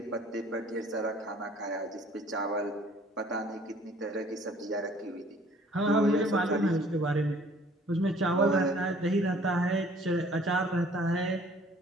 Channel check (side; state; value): both; normal; correlation 0.55